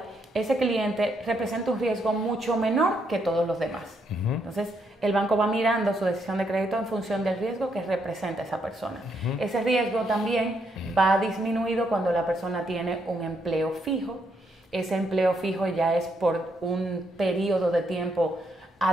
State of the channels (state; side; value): normal; both; correlation 0.76